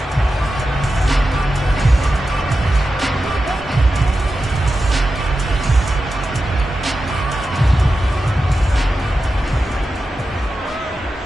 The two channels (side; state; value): both; normal; correlation 0.91